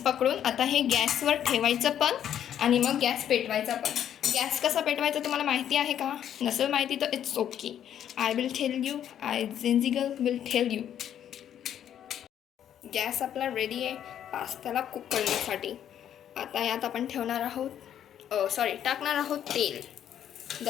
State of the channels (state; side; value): quieter; right; 10.0 dB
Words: आता हे गॅसवर ठेवायचं पण आणि मग गॅस पेटवायचा पण. गॅस कसा पेटवायचा तुम्हाला माहिती आहे का? नसेल माहिती तर it's okay, I will tell you. I Gen Z girl will tell you. Gas आपला रेडी आहे पास्त्याला कुक करण्यासाठी. आता यात आपण ठेवणार आहोत टाकणार आहोत तेल. The